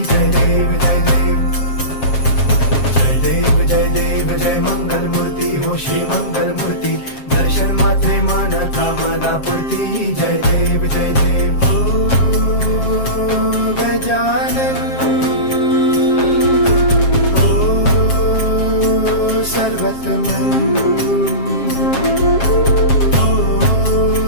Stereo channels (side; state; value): right; late; 7.4 ms